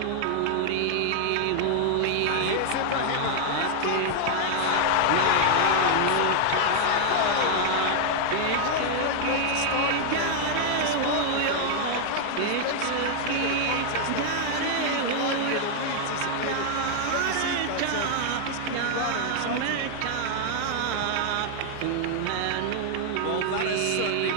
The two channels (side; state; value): both; different; correlation 0.00